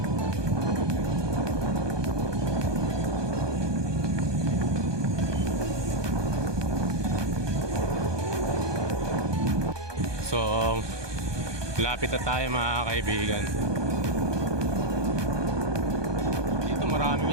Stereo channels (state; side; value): late; left; 1.2 ms